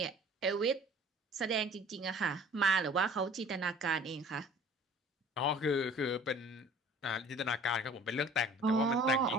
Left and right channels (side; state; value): both; normal; correlation 0.49